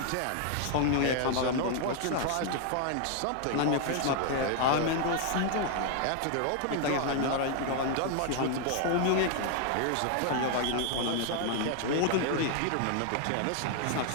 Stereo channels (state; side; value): different; both; correlation 0.00